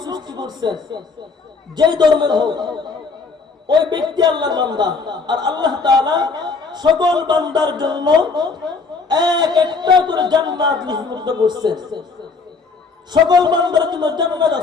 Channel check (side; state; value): right; quieter; 4.5 dB